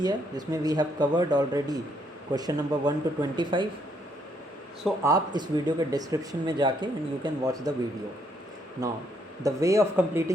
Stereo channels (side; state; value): both; normal; correlation 0.72